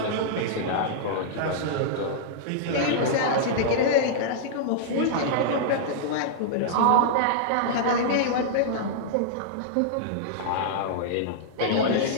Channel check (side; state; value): both; different; correlation -0.02